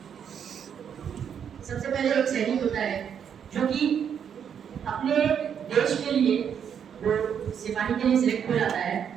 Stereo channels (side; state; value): left; quieter; 8.0 dB